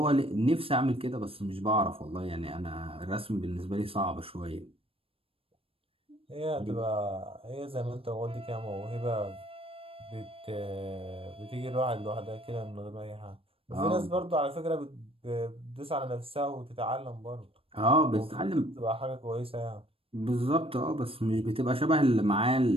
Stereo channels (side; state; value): left; late; 0.27 ms